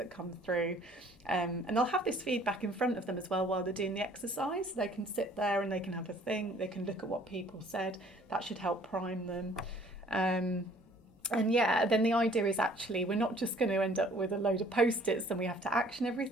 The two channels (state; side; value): normal; both; correlation 0.56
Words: come through. And they'll have this feedback in front of them as well while they're doing the exercise. They can sit there and they can have a think, they can look at what people said. That should help prime them. And yeah, then the idea is actually we're not just going to end up with a load of post-its and we have to action